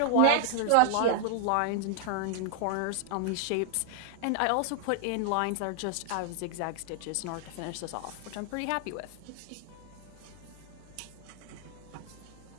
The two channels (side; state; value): both; different; correlation 0.00